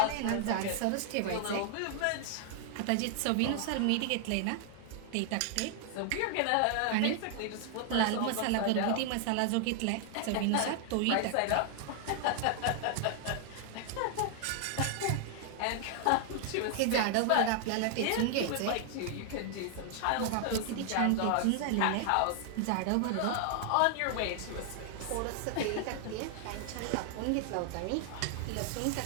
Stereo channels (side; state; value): both; different; correlation 0.00